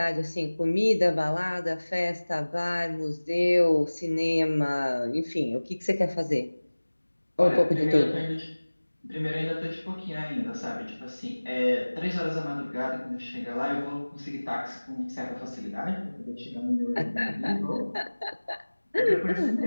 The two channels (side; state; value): both; inverted; correlation -1.00